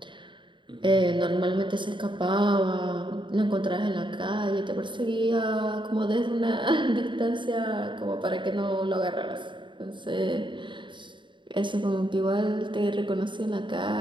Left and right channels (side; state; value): left; late; 0.23 ms